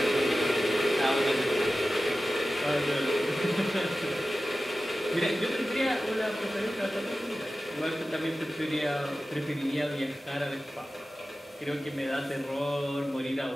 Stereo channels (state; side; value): normal; both; correlation 0.95